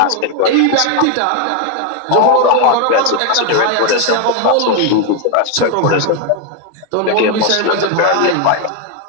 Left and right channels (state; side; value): different; both; correlation 0.01